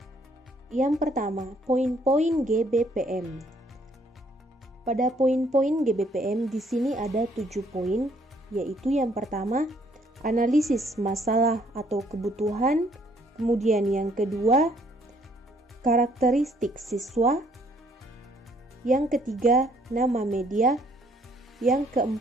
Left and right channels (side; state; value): both; normal; correlation 0.65